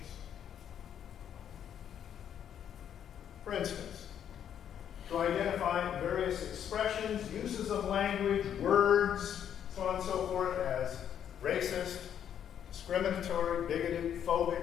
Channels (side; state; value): right; quieter; 9.3 dB